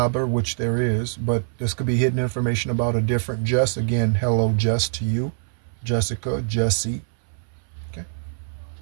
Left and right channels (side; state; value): left; silent; 61 dB below the other